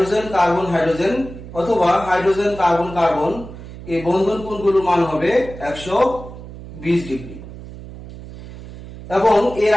কার্বন হাইড্রোজেন অথবা হাইড্রোজেন কার্বন কার্বন এই বন্ধন কোণগুলোর মান হবে 120 ডিগ্রি এবং এর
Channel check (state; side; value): noise; right; hum, 14 dB below the sound